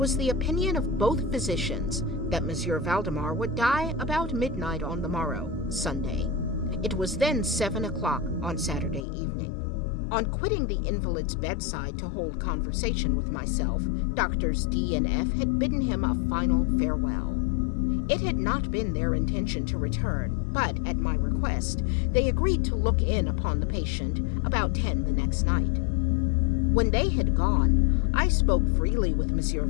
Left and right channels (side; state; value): right; drops out; at 9.1 s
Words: the opinion of both physicians that Monsieur Valdemar would die about midnight on the morrow, Sunday. It was then 7 o'clock on Saturday evening. On quitting the invalid's bedside to hold conversation with myself, Doctors D and F had bidden him a final farewell. It had not been their intention to return, but, at my request, they agreed to look in upon the patient about 10 the next night. When they had gone, I spoke freely with Monsieur